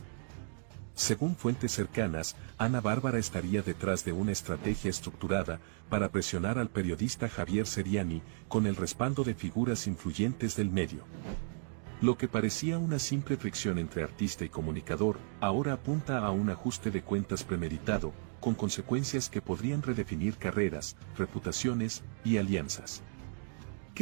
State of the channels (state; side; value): silent; left; digital silence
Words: Según fuentes cercanas, Ana Bárbara estaría detrás de una estrategia estructurada para presionar al periodista Javier Seriani con el respaldo de figuras influyentes del medio. Lo que parecía una simple fricción entre artista y comunicador, ahora apunta a un ajuste de cuentas premeditado, con consecuencias que podrían redefinir carreras, reputaciones y alianzas.